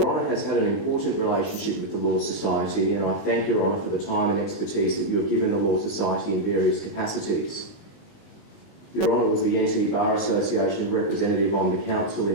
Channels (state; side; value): late; right; 19 ms